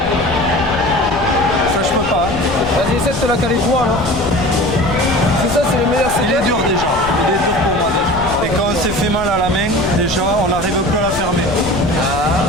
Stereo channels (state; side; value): noise; left; rumble, 11 dB below the sound